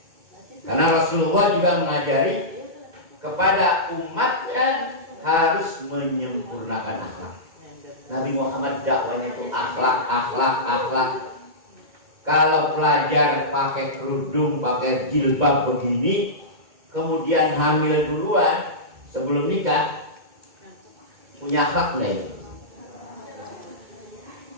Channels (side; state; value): left; late; 2.2 ms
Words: Karena Rasulullah juga mengajari kepada umatnya harus menyempurnakan akhlak. Nabi Muhammad dakwanya itu akhlak. Kalau pelajar pakai kerudung, pakai jilbab begini, kemudian hamil duluan sebelum nikah, punya akhlak lain.